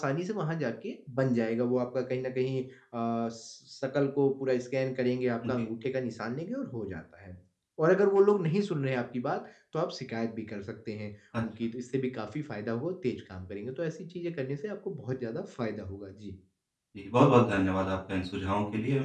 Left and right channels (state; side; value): identical; both; correlation 1.00